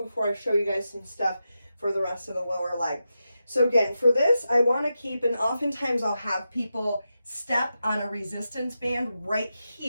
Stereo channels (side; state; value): both; inverted; correlation -0.89